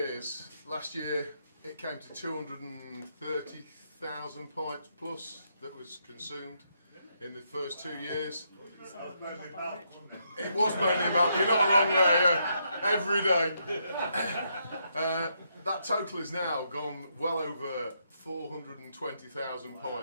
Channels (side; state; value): both; inverted; correlation -0.78